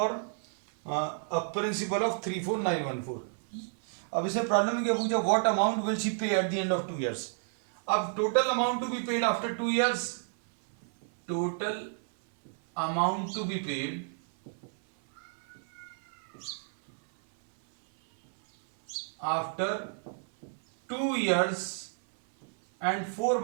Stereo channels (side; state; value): left; silent; 57 dB below the other